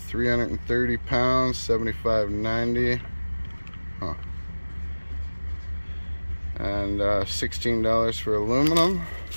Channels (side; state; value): both; inverted; correlation -1.00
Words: 330 pounds, $75.90. Huh. And $16 for aluminum.